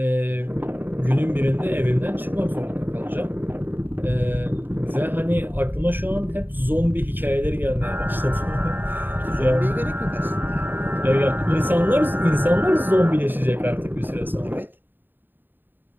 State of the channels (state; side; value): late; left; 0.093 ms